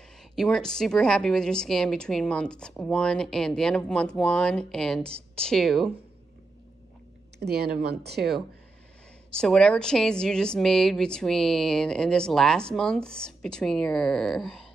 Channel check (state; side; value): quieter; left; 3.4 dB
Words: You weren't super happy with your scan between month 1 and the end of month 1 and 2. The end of month 2. So whatever changes you just made between, in this last month, between your